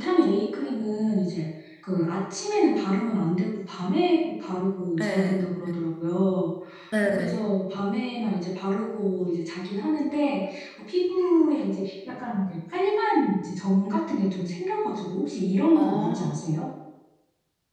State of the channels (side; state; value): both; identical; correlation 1.00